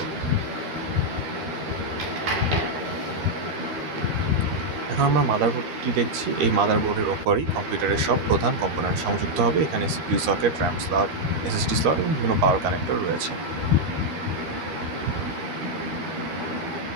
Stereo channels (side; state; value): left; late; 13 ms